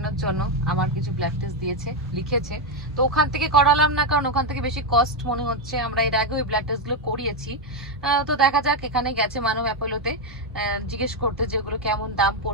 জন্য আমার কিছু ব্লাড টেস্ট দিয়েছে, লিখেছে। তো ওখান থেকে করালাম না, কারণ ওখান থেকে বেশি কস্ট মনে হচ্ছে। আমরা এর আগে ওই ব্লাড টেস্ট গুলো করিয়েছি। তো দেখা যাক, এখানে গেছে মানব অ্যাপেলোতে জিজ্ঞেস করতে যেগুলো কেমন দাম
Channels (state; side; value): normal; both; correlation 0.05